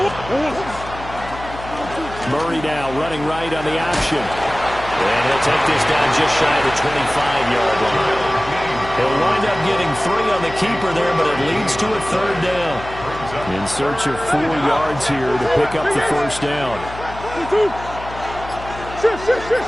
Murray now running right on the option. And he'll take this down just shy of the 25-yard line. He'll wind up getting 3 on the keeper there, but it leads to a 3rd down. In search of 4 yards here to pick up the 1st down.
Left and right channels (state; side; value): noise; left; hum, 13 dB below the sound